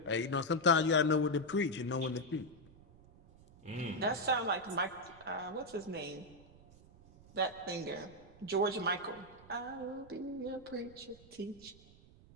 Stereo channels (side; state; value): right; noise; rumble, 23 dB below the sound